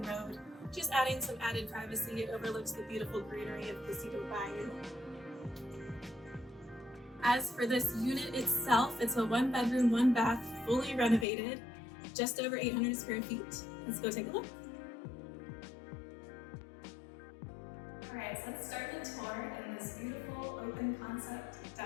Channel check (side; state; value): right; drops out; at 11.2 s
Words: road, just adding some added privacy. It overlooks the beautiful greenery of Placido Bayou. As for this unit itself, it's a 1-bedroom, 1-bath, fully renovated, just over 800 square feet. Let's go take a look. All right, so let's start the tour in this beautiful open concept